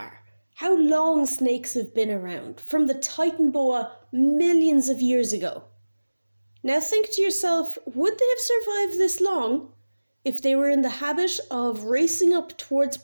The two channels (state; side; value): inverted; both; correlation -1.00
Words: How long snakes have been around, from the Titan boa millions of years ago. Now think to yourself, would they have survived this long if they were in the habit of racing up towards